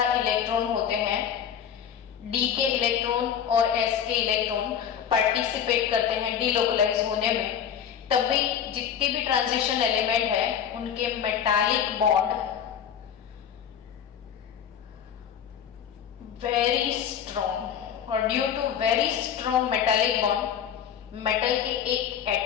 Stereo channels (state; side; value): quieter; right; 8.6 dB